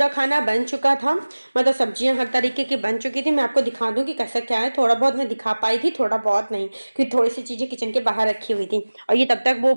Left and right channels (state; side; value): inverted; both; correlation -1.00